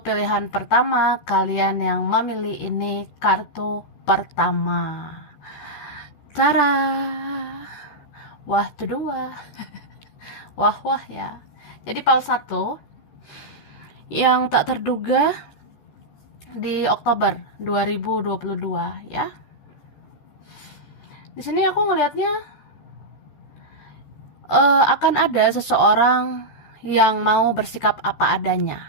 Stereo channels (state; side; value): late; right; 14 ms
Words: pilihan pertama. Kalian yang memilih ini kartu pertama. Tara. Wah, tuh dua. Wah ya. Jadi file 1 yang tak terduga di Oktober 2022 ya. Di sini aku ngelihatnya akan ada seseorang yang mau bersikap apa